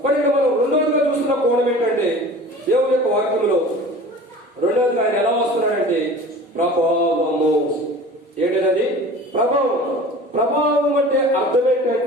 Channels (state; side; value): normal; both; correlation 0.41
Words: మరి ఇక్కడ మనం రెండోదిగా చూస్తున్న కోణం ఏంటంటే, దేవుని యొక్క వాక్యంలో రెండోదిగా ఆయన ఎలా వస్తున్నాడంటే ప్రభావము. ఏంటది? ప్రభావం. ప్రభావం అంటే అర్థం